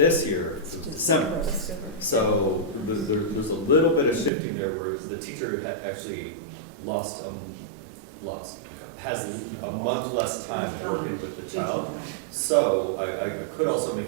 year, it was December. So there's a little bit of shifting there where the teacher had actually has a month less time working with the child. So I could also make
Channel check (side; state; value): left; drops out; at 4.3 s